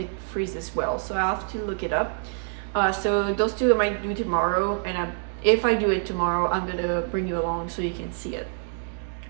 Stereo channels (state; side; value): silent; left; digital silence